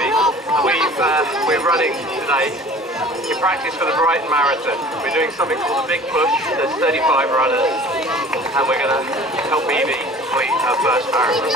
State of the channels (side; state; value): both; normal; correlation 0.46